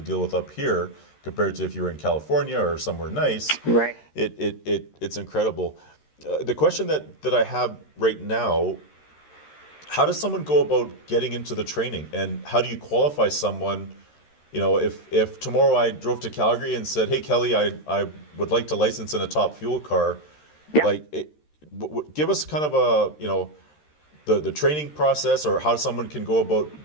deal with up here compared to if you were in California or somewhere nice. Right. It's incredible. The question that I have right now, how does someone go about getting into the training, and how do you qualify someone? If tomorrow I drove to Calgary and said, "Hey, Kelly, I would like to license in a top fuel car," yeah. Give us kind of the training process, or how someone can go about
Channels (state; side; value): late; right; 13 ms